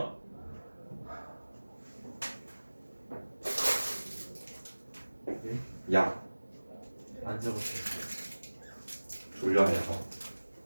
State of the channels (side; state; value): both; inverted; correlation -1.00